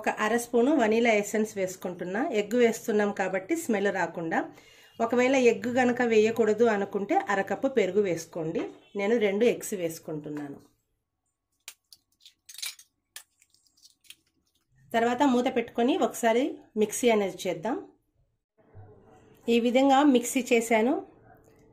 అర స్పూను వనీలా ఎసెన్స్ వేసుకుంటున్నా. ఎగ్ వేస్తున్నాం కాబట్టి స్మెల్ రాకుండా. ఒకవేళ ఎగ్ కనుక వేయకూడదు అనుకుంటే అరకప్పు పెరుగు వేసుకోండి. నేను 2 ఎగ్స్ వేసుకుంటున్నాను. తర్వాత మూత పెట్టుకొని ఒకసారి మిక్సీ అనేది చేద్దాం. ఈ విధంగా మిక్సీ చేశాను.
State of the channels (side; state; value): both; identical; correlation 1.00